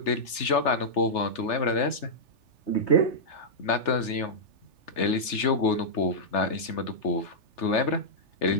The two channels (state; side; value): late; right; 3.4 ms